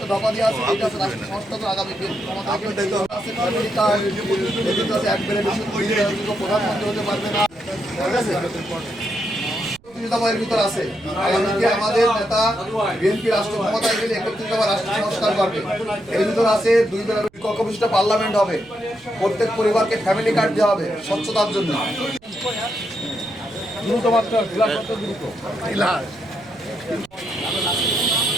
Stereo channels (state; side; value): noise; right; rumble, 29 dB below the sound